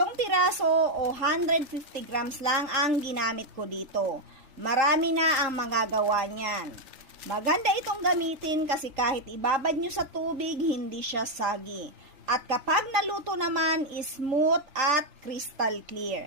piraso o 150 grams lang ang ginamit ko dito. Marami na ang magagawa niyan. Maganda itong gamitin kasi kahit ibabad nyo sa tubig, hindi siya sagi. At kapag naluto naman, smooth at crystal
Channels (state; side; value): late; left; 3.7 ms